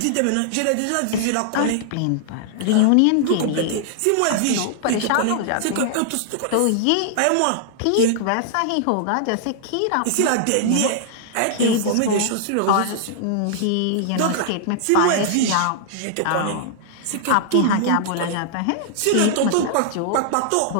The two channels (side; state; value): both; different; correlation -0.01